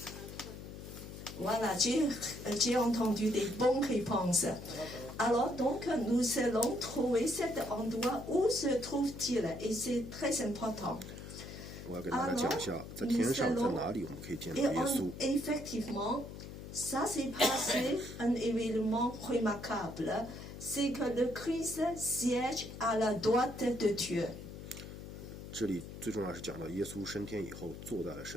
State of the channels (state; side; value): noise; left; hum, 11 dB below the sound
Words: Voilà, j'ai entendu des bonnes réponses. Alors, donc, nous allons trouver cet endroit où se trouve-t-il, et c'est très important. 我要给大家讲一下，在天上在哪里我们可以见到 Et 耶稣。 effectivement, ça s'est passé un événement remarquable, c'est que le Christ siège à la droite de Dieu. 这里最重要是讲到耶稣升天以后坐在了